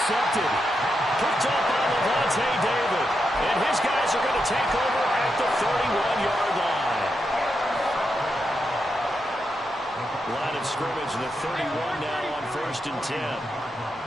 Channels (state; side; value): normal; both; correlation 0.85